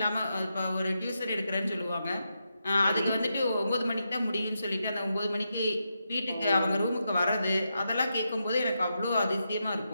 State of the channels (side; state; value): both; inverted; correlation -0.85